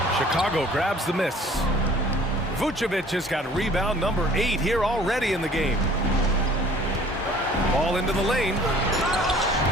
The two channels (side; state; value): both; normal; correlation 0.52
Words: Chicago grabs the miss. Vucevic has got rebound number 8 here already in the game. Ball into the lane.